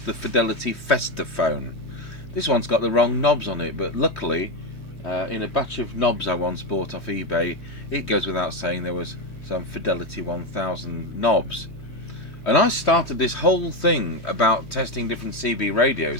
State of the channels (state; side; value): late; right; 3.2 ms